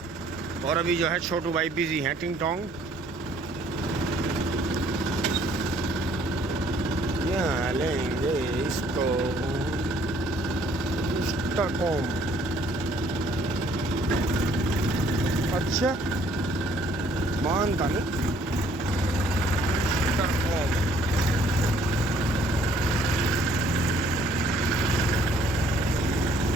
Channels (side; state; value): both; normal; correlation 0.62